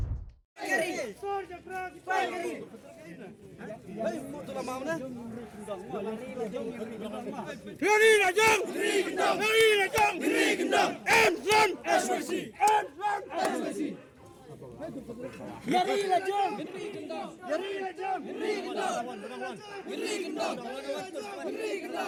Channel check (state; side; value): identical; both; correlation 1.00